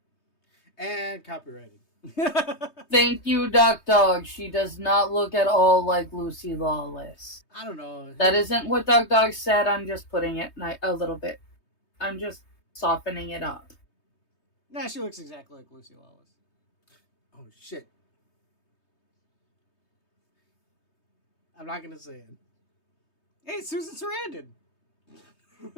And copyrighted. Thank you, Duck Dog. She does not look at all like Lucy Lawless. I don't know. That isn't what Duck Dog said. I'm just putting it a little bit. I'm just softening it up. Nah, she looks exactly like Lucy Lawless. Oh, shit. I'm not going to say it. Hey, Susan Sarandon.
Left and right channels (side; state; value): right; late; 3.2 ms